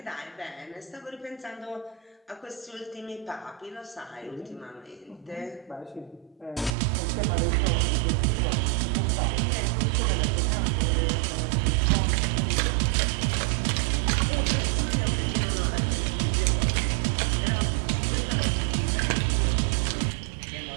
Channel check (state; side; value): drops out; left; at 6.8 s